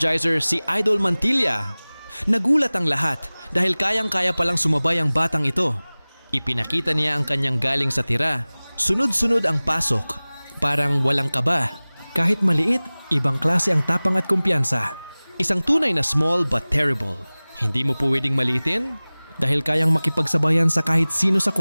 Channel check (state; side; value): inverted; both; correlation -1.00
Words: si Idol Mantilla? Nagulat ang lahat dahil kayang-kaya palang sumabay ang batang ito. Ipinakita niya ang kanyang galing sa tira. Sunod-sunod ang pasok. Parang walang kaba. Kahit maliit, ibang klase ang tapang at kumpiyansa. Isang tunay na small but terrible. Hindi mo po pwedeng maliitin dahil kayang makipagsabayan sa kahit sino sa